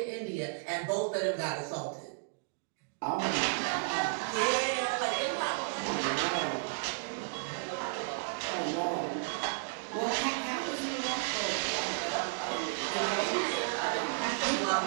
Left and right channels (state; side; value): silent; left; digital silence